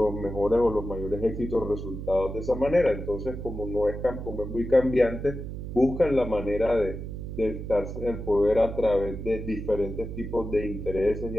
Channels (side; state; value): right; noise; hum, 7 dB below the sound